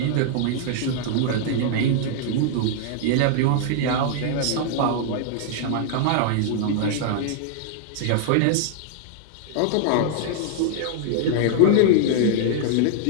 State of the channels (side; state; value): both; different; correlation -0.01